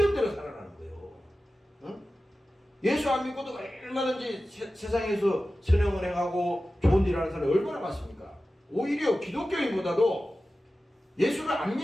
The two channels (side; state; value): both; normal; correlation 0.95